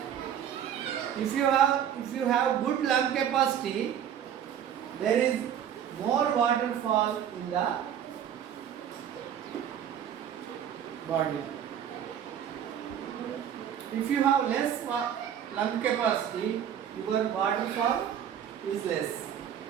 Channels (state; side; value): quieter; left; 9.4 dB